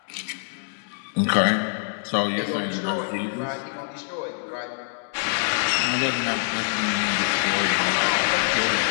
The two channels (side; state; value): right; silent; digital silence